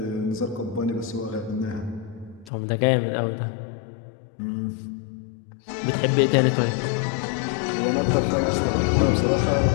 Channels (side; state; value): right; drops out; at 2.5 s